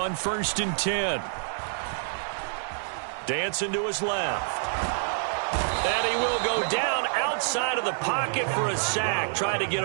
1st and 10. Dancing to his left. And he will go down outside of the pocket for a sack. Tried to get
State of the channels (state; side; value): silent; left; digital silence